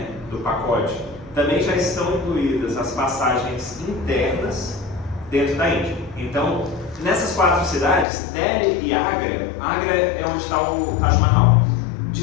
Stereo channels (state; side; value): drops out; right; at 8.1 s